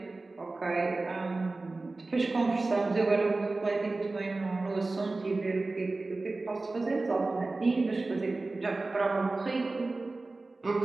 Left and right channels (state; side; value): quieter; left; 3.3 dB